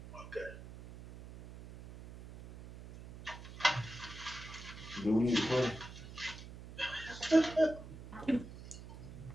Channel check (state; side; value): noise; right; hum, 14 dB below the sound